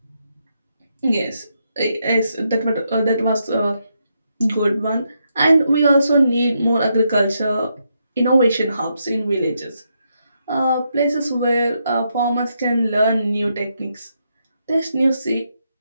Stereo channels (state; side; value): inverted; both; correlation -0.80